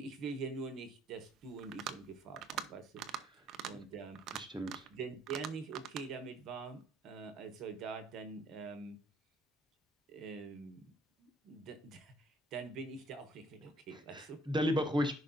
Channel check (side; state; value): both; normal; correlation 0.63